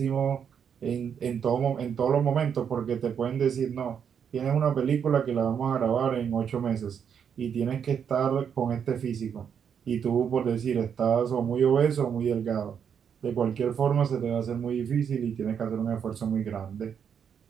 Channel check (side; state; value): left; quieter; 7.6 dB